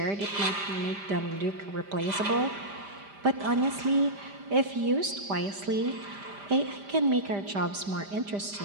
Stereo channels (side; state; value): left; late; 5.0 ms